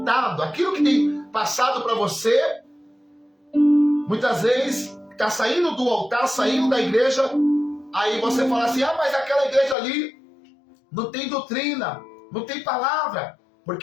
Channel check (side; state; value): right; drops out; at 9.8 s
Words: aquilo que tem passado para você, muitas vezes está saindo do altar, saindo da igreja, aí você fala assim, mas aquela igreja ali não tem doutrina, não tem palavra,